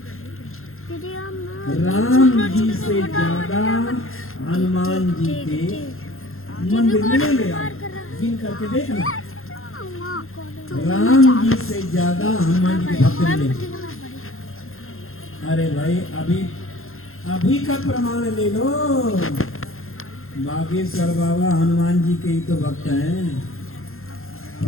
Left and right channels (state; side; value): late; right; 0.61 ms